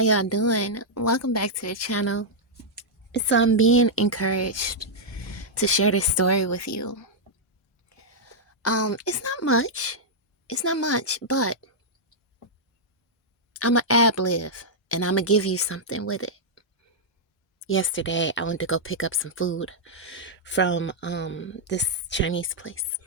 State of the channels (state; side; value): normal; both; correlation -0.07